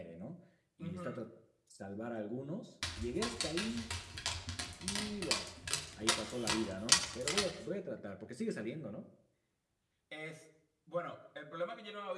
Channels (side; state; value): both; identical; correlation 1.00